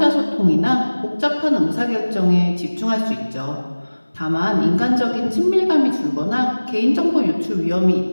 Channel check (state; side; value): inverted; both; correlation -1.00